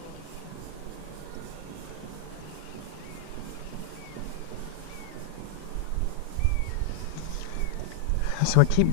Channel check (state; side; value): different; both; correlation 0.00